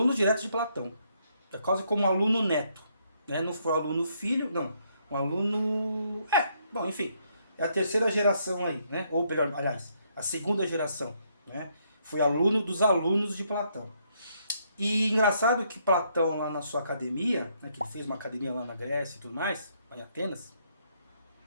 diretos de Platão. É quase como um aluno neto, né? Não foi um aluno filho, não. Um aluno... bom, enfim. É a terceira geração aí, né? Ou melhor, aliás, a segunda geração, né? Foi aluno dos alunos de Platão. E engraçado que Platão, lá na sua academia, né, que ele fez uma academia lá na Grécia e tudo mais, lá em Atenas,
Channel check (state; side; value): inverted; both; correlation -0.72